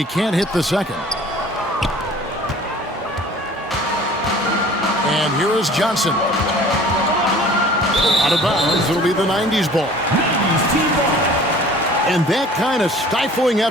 can't hit the second. And here is Johnson. Out of bounds, it'll be the 90's ball. And that kind of stifling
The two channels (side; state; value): both; normal; correlation 0.48